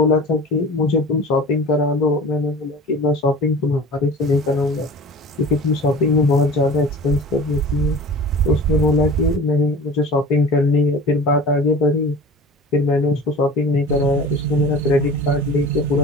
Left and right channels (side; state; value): both; normal; correlation 0.40